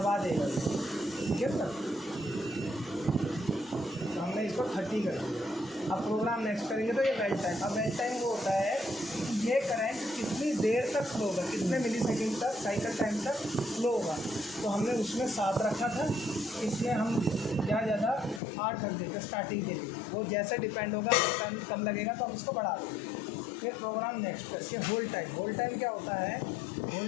देगा। ठीक है सर, तो हमने इसको 30 कर दिया। अब प्रोग्राम नेक्स्ट करेंगे तो ये वेल्ड टाइम। अब वेल्ड टाइम वो होता है ये करंट कितनी देर तक फ्लो होगा, कितने मिलीसेकंड तक, साइकिल टाइम तक फ्लो होगा। तो हमने उसमें 7 रखा था, इसमें हम ज़्यादा 8 रख देते स्टार्टिंग के लिए। वो जैसे डिपेंड होगा, टाइम कम लगेगा तो हम इसको बढ़ा देंगे। फिर प्रोग्राम नेक्स्ट करके होल्ड टाइम। होल्ड टाइम क्या होता है,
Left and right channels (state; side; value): drops out; right; at 18.4 s